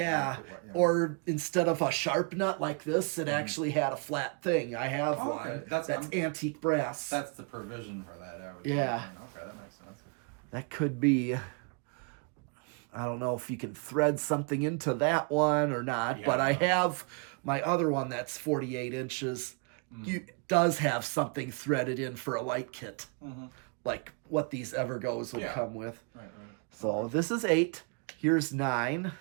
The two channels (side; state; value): left; quieter; 36.2 dB